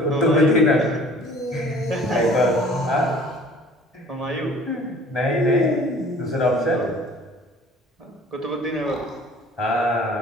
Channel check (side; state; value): both; normal; correlation 0.50